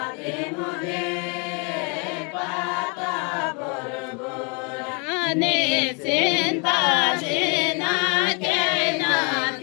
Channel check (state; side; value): quieter; right; 34.7 dB